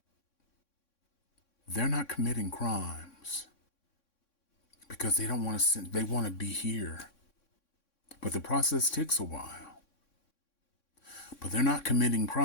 They're not committing crimes because they don't want to. They want to be here, but the process takes a while. But they're not committing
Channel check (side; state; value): right; late; 3.6 ms